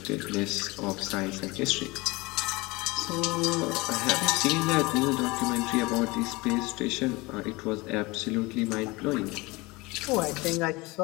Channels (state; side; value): quieter; right; 23.4 dB